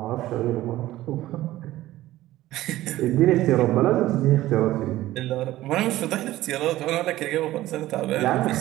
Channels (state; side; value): quieter; left; 15.6 dB